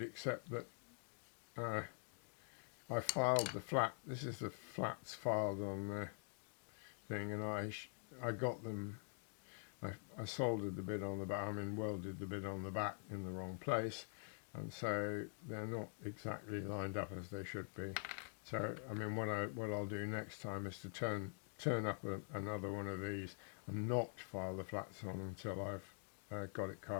that I filed the flat. This is the flats filed on the thing, and I got them. I soldered the bit on the back. I mean, welded the bit on the back in the wrong place, and so they're not exactly lined up as they should be. So I mean, what I'll do next time is to turn turn up another one of these and not file the flats on until I've got it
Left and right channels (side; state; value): right; silent; digital silence